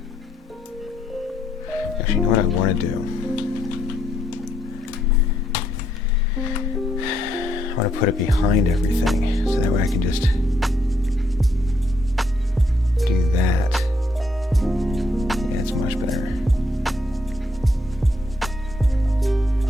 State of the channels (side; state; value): both; normal; correlation 0.74